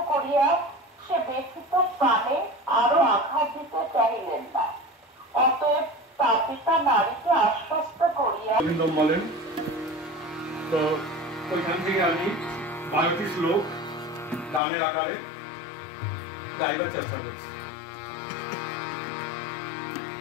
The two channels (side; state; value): right; drops out; at 14.6 s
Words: করিয়া সে ব্যথিত প্রাণে আরো আঘাত দিতে চাইলেন না। অতএব তাপিতা নারীকে আশ্বস্ত করিয়া বলেন, তো ওইখান থেকে আমি 12টি শ্লোক গানের আকারে গাইবার চেষ্টা করছি।